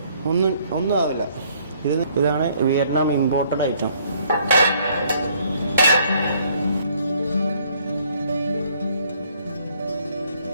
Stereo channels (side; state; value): both; inverted; correlation -0.64